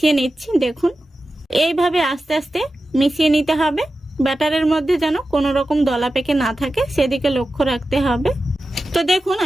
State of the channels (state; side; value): normal; both; correlation 0.93